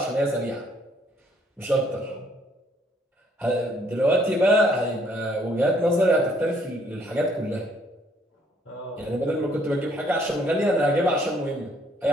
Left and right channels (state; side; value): normal; both; correlation 0.65